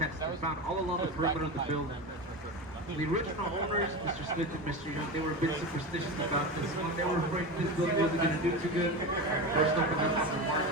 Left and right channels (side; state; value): both; normal; correlation 0.23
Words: They're found all along the perimeter of the building. The original owners, Mr. Smith and Mr. Young, they were a bit superstitious about this one. They were afraid this building wasn't gonna do too good. First opened up on the market